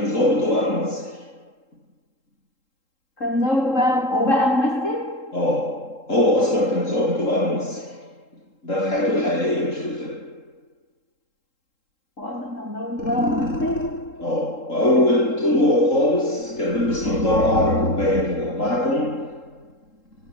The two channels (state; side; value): late; right; 3.8 ms